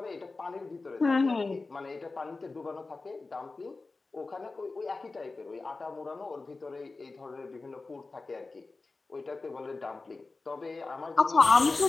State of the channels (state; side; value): quieter; right; 3.7 dB